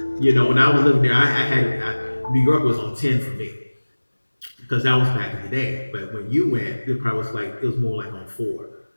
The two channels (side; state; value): both; inverted; correlation -1.00